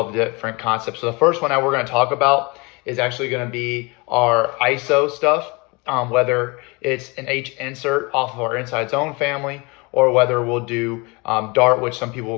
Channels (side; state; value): right; quieter; 27.3 dB